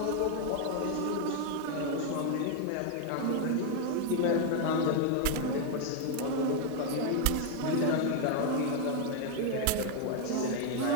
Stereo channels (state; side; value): different; both; correlation 0.00